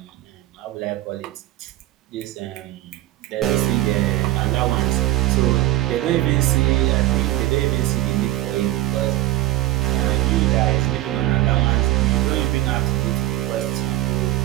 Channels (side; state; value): left; quieter; 15.5 dB